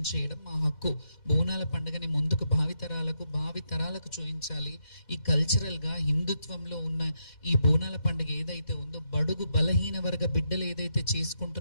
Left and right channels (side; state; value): right; late; 4.1 ms